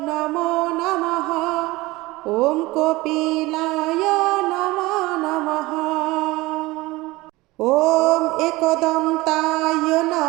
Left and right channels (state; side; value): quieter; left; 20.6 dB